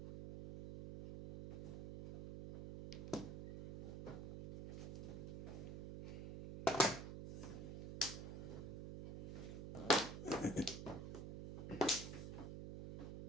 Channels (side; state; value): right; noise; hum, 7 dB below the sound